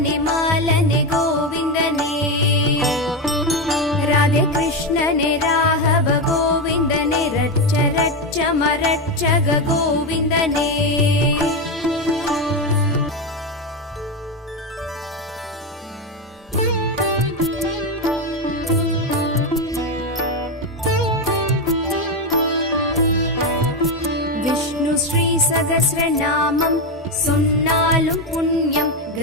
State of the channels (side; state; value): both; normal; correlation 0.11